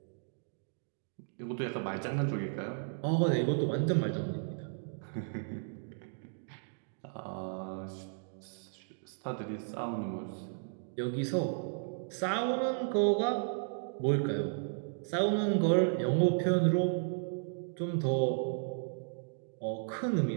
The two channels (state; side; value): silent; left; digital silence